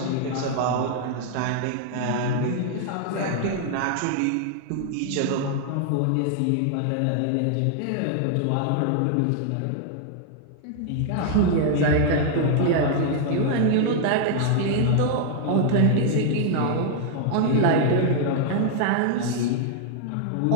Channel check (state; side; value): different; both; correlation 0.00